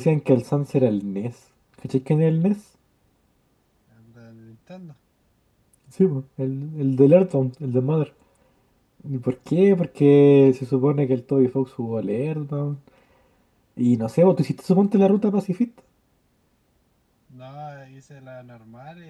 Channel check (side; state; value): both; identical; correlation 1.00